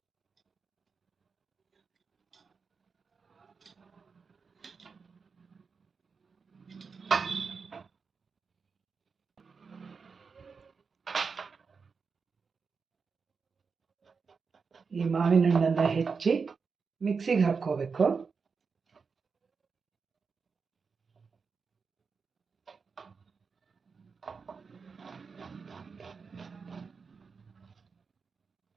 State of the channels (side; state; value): left; quieter; 5.2 dB